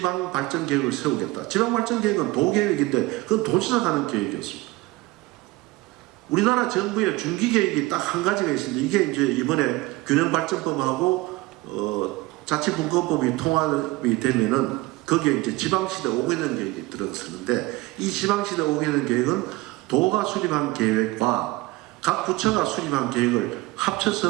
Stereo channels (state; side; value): quieter; left; 20.5 dB